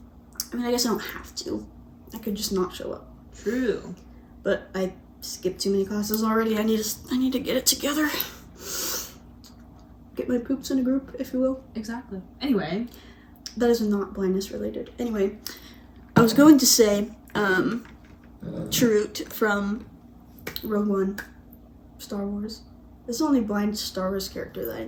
I mean, I guess I don't have to. I could just not show up. True. But I skipped too many classes already. I need to get it together. Get my poops in a group, if you will. Exactly. Anyway. That is not blindness related. Anyway, I was going to say, Chirrut from Rogue One, Star Wars. This is the only blind Star Wars character that I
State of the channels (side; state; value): both; identical; correlation 1.00